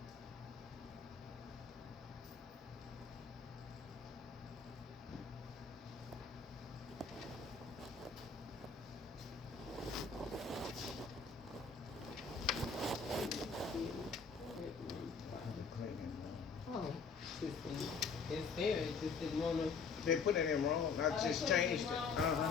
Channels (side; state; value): right; quieter; 5.1 dB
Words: Oh, it's there, it just didn't wanna. They put it in wrong. I just changed it.